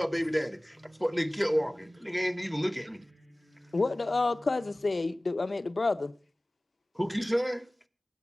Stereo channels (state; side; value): normal; both; correlation 0.98